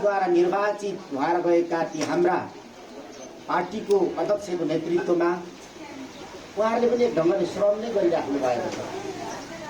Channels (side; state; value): both; identical; correlation 1.00